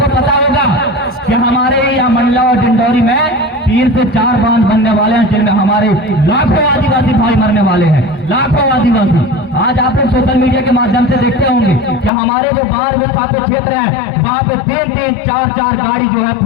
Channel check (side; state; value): right; drops out; at 12.1 s